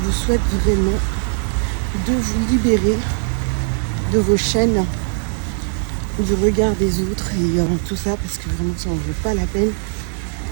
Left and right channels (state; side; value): silent; left; digital silence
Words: souhaite vraiment de vous libérer de vos chaînes, du regard des autres et tout ça, parce que vraiment ça en vaut pas la peine.